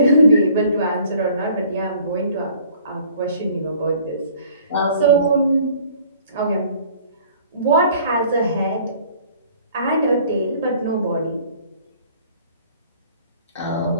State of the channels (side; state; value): both; inverted; correlation -0.54